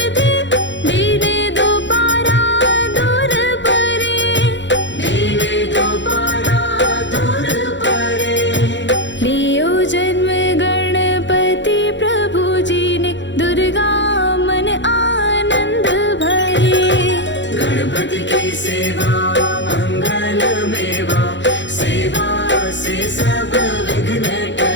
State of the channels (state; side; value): late; right; 0.53 ms